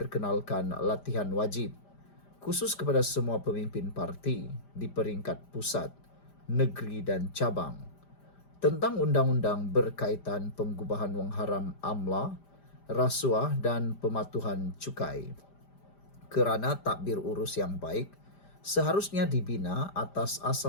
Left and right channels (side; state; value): right; late; 5.0 ms